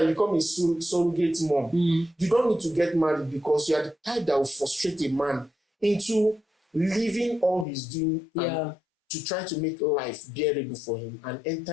you become a surrogate mom. You don't need to get married because you are the type that will frustrate a man into leaving all he's doing and to try to make life bearable for him and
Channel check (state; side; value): drops out; right; at 7.7 s